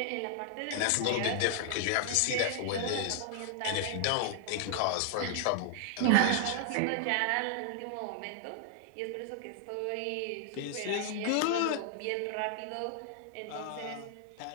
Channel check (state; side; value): different; both; correlation 0.00